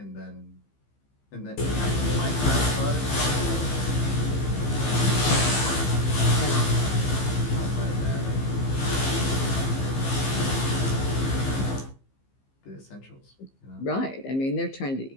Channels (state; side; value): late; right; 15 ms